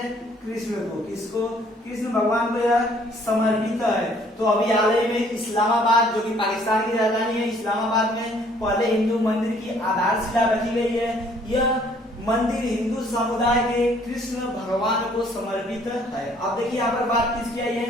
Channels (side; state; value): both; normal; correlation 0.61